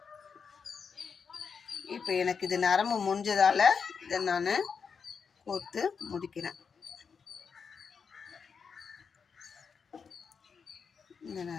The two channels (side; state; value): right; quieter; 5.9 dB